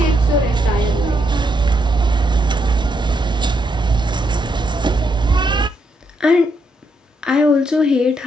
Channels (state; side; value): normal; both; correlation 0.78